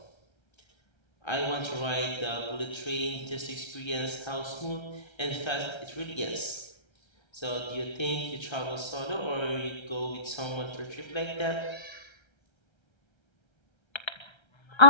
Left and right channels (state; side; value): late; right; 1.3 ms